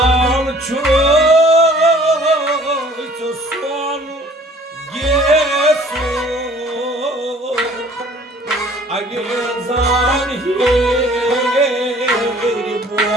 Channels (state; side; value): normal; both; correlation 0.54